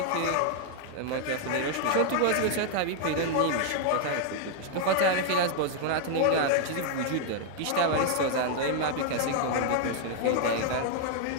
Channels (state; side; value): different; both; correlation 0.00